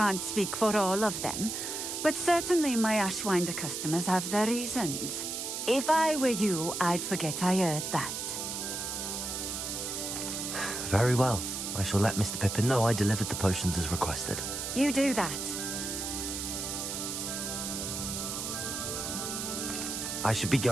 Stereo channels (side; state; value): right; noise; hiss, 4 dB below the sound